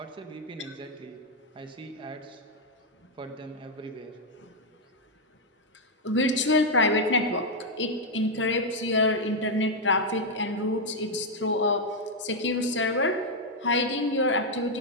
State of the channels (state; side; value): normal; both; correlation 0.00